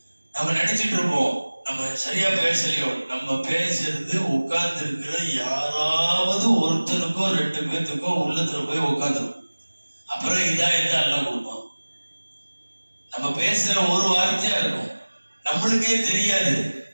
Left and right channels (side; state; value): both; inverted; correlation -1.00